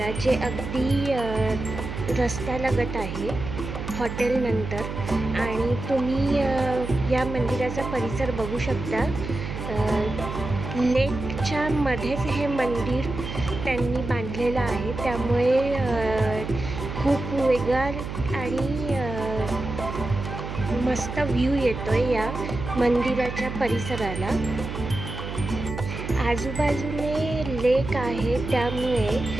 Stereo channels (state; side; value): noise; right; hum, 7 dB below the sound